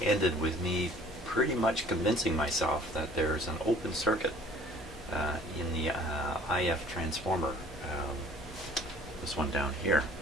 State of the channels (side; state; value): both; normal; correlation 0.53